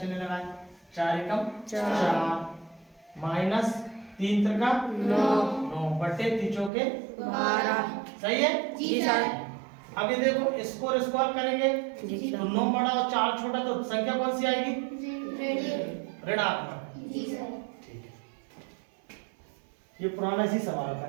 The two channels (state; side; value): drops out; left; at 6.7 s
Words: लगाए 4 एकम 4, माइनस 3 त्रिका 9 बटे 3 चौके 12। सही है? जी सर। अब ये देखो इसको और इसको हल करेंगे जी सर। तो 9 बड़ा और 4 छोटा तो संख्या कौन सी आएगी? ऋणात्मक। ठीक है, ये पुराना इसी सवाल का